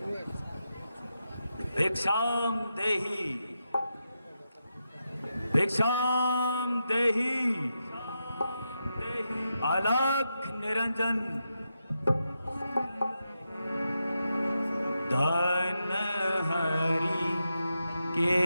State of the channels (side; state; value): both; inverted; correlation -0.87